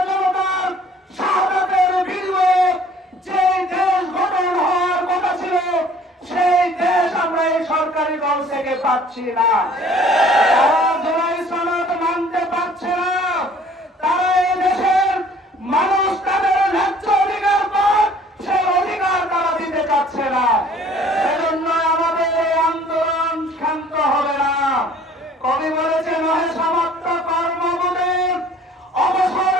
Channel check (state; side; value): normal; both; correlation 0.54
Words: জনতার শাহাদাতের বিনিময়ে যে দেশ গঠন হওয়ার কথা ছিল, সেই দেশ আমরা এই সরকারি দল থেকে পাচ্ছি না। তারা জুলাই সনদ মানতে পারছে না। তারা এই দেশের মানুষ তাদের ন্যায্য অধিকার পাক, সেই অধিকার তারা দিতে চাচ্ছে না। সেজন্য আমাদের এই আন্দোলন শান্ত হবে না। কবি বলেছে, নহে সমাপ্ত কর্মবোধের অবসর